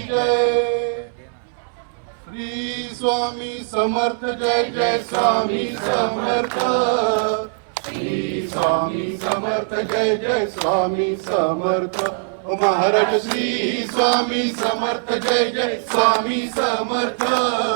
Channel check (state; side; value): silent; left; 65 dB below the other